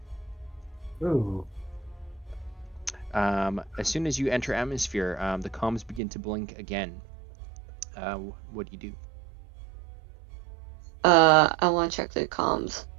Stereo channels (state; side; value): drops out; left; at 6.0 s